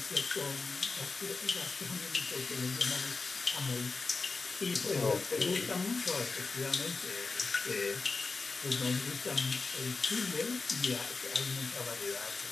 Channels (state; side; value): quieter; right; 4.2 dB